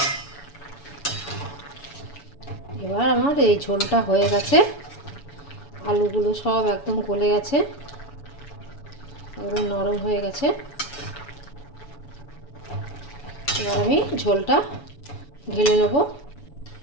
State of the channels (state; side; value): late; right; 7.0 ms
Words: এবার আমার এই ঝোলটা হয়ে গেছে, আলুগুলো সব একদম গলে গেছে, একদম নরম হয়ে গেছে। এবার আমি ঝোলটা ঢেলে নেব।